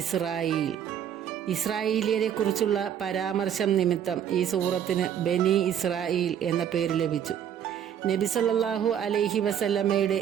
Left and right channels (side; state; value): left; quieter; 9.3 dB